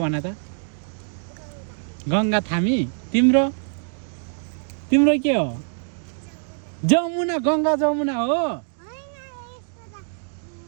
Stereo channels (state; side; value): silent; left; digital silence